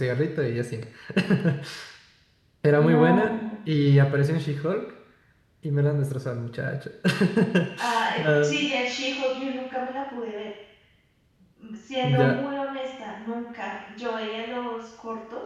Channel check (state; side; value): identical; both; correlation 1.00